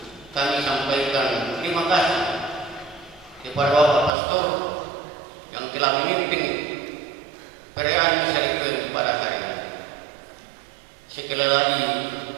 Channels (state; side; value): drops out; left; at 4.1 s